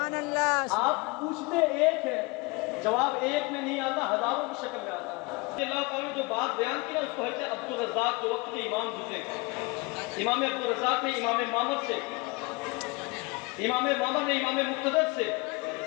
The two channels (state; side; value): quieter; right; 26.4 dB